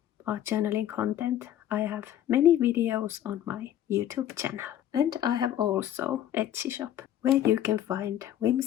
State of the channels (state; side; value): quieter; right; 11.4 dB